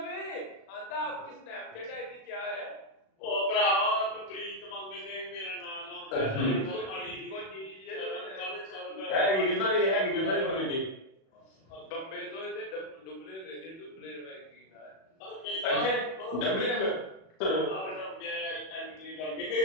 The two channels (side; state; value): right; late; 37 ms